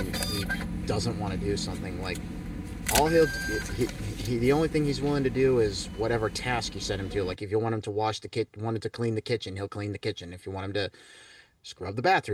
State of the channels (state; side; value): identical; both; correlation 1.00